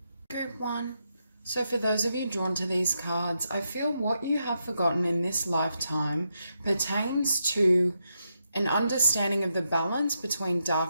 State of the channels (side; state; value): both; inverted; correlation -0.83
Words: Group 1. So for those of you drawn to these cards, I feel what you have forgotten in this lifetime pertains to an understanding of the balance between